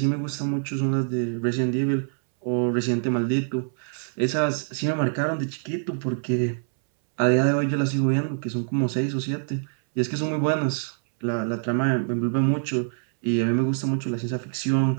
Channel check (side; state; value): left; silent; 62 dB below the other